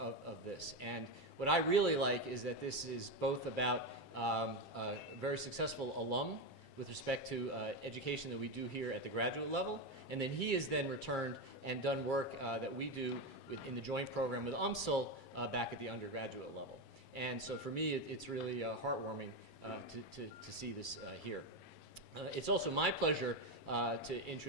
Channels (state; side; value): late; right; 7.5 ms